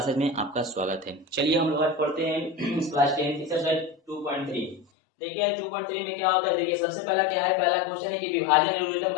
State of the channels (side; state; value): right; drops out; at 4.9 s